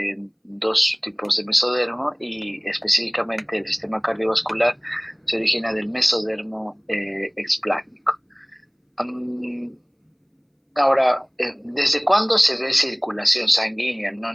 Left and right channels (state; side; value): identical; both; correlation 1.00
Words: en dos tipos de mesodermo y específicamente el sistema cardiovascular se origina del mesodermo explácnico. Ahora, ¿desde cuándo se ve circulación sanguínea? No